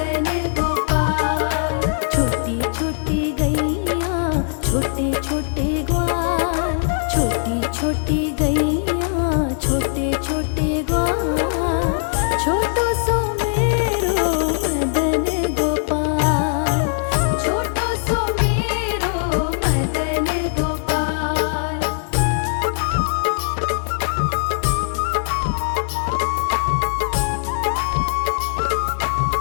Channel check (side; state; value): right; silent; digital silence